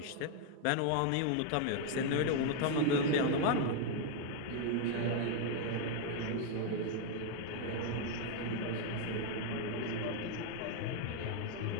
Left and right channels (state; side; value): different; both; correlation 0.00